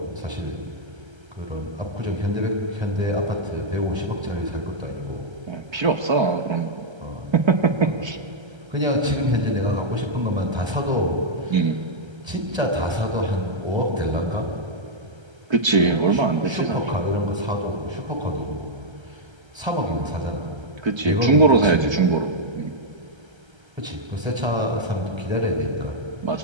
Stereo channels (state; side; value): late; left; 1.3 ms